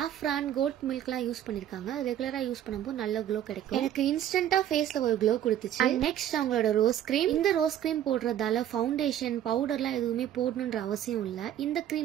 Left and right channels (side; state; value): left; quieter; 11.1 dB